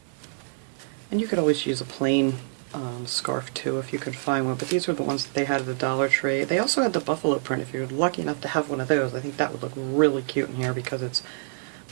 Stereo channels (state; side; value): silent; left; digital silence